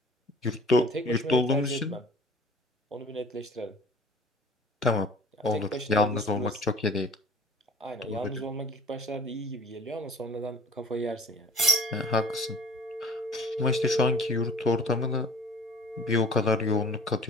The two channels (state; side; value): normal; both; correlation 0.46